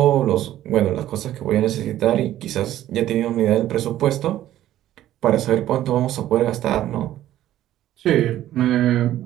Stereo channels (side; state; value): left; quieter; 13.1 dB